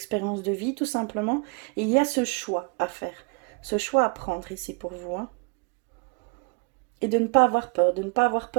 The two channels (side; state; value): left; quieter; 30.1 dB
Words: de vie, tout simplement. Et il y a ce choix à faire, ce choix à prendre ici pour vous, hein. Et de ne pas avoir peur, de ne pas avoir